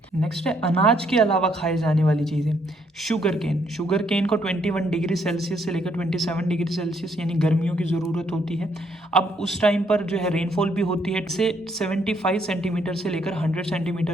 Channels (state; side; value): normal; both; correlation 0.70